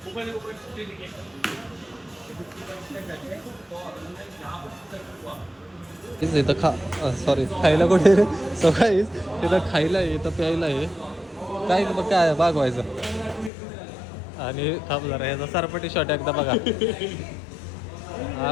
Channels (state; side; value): drops out; right; at 13.5 s